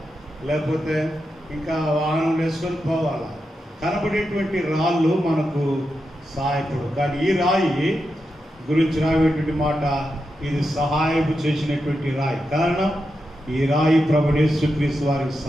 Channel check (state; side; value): normal; both; correlation 0.87